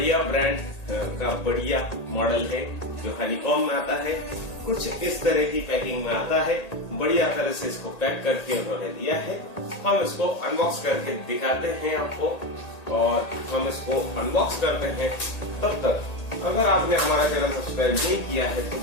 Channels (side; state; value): right; late; 1.8 ms